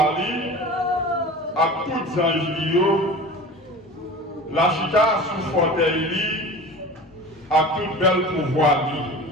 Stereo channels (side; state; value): both; normal; correlation 0.36